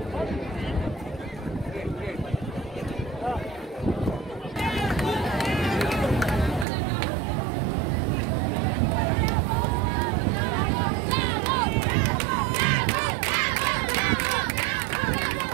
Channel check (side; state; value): left; drops out; at 6.7 s